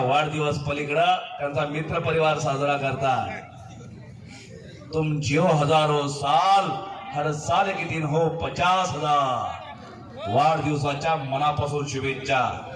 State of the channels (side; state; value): both; identical; correlation 1.00